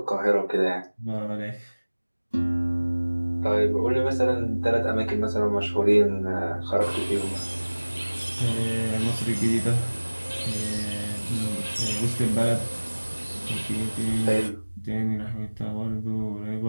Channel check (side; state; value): both; inverted; correlation -1.00